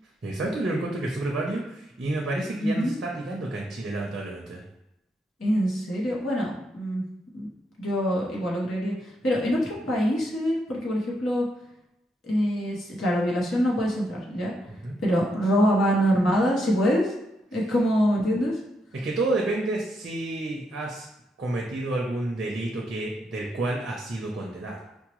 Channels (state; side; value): normal; both; correlation 0.80